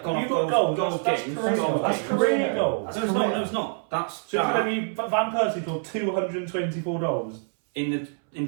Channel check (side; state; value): left; silent; 61 dB below the other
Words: gone You've off got goals that's games. career goals. That's career goals. No, it's not. No, it's not. That's So maybe Van Persie scored 224 goals. in